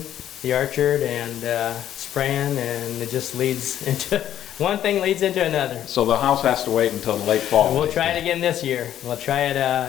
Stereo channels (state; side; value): quieter; right; 11.1 dB